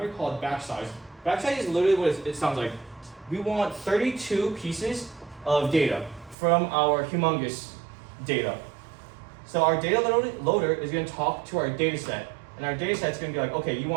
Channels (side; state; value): left; drops out; at 6.4 s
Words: called batch size. Batch size is literally what it sounds like. We want 32 pieces of data from our humongous data. So our data loader is going to talk to our data set. And our data set is going to be like, okay, you